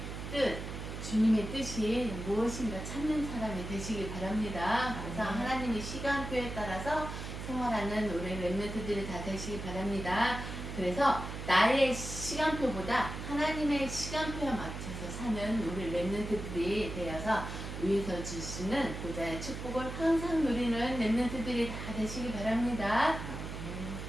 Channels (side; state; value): right; noise; hum, 7 dB below the sound